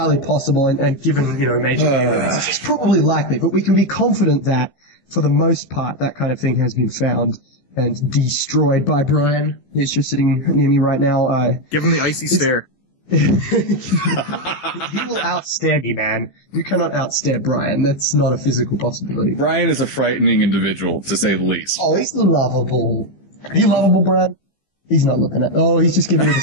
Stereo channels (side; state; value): right; late; 14 ms